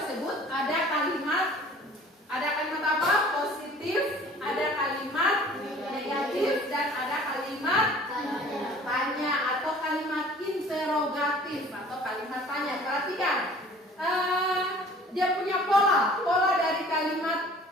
ada kalimat apa? Positif, ada kalimat negatif, dan ada kalimat tanya atau kalimat interrogatif atau kalimat tanya. Perhatikan, dia punya pola dari kalimat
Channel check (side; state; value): both; normal; correlation 0.49